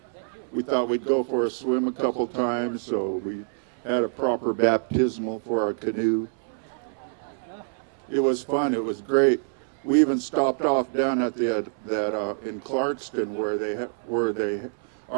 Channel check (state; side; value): silent; left; 61 dB below the other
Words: We thought we'd go for a swim a couple times, so we had a proper baptismal for our canoe. It was fun. It was great. We even stopped off down at the in Clarkston where they